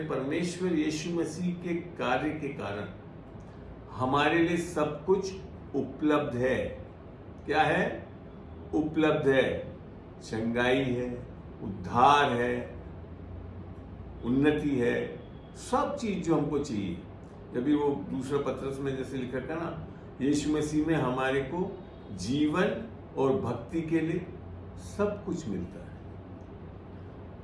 परमेश्वर यीशु मसीह के कार्य के कारण हमारे लिए सब कुछ उपलब्ध है। क्या है? उपलब्ध है। चंगाई है, उद्धार है, उन्नति है, सब चीज जो हमको चाहिए। जब भी वो दूसरा पत्रस में जैसे लिखा था ना, यीशु मसीह में हमारे को जीवन और भक्ति के लिए सब कुछ मिलता है।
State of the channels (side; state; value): both; identical; correlation 1.00